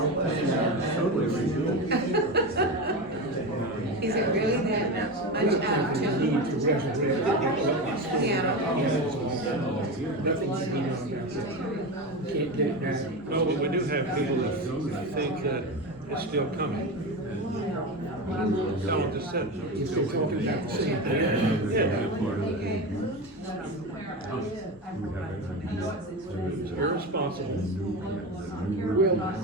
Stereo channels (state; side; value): normal; both; correlation 0.21